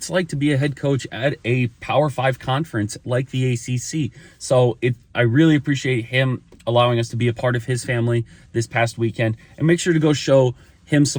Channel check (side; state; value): both; identical; correlation 1.00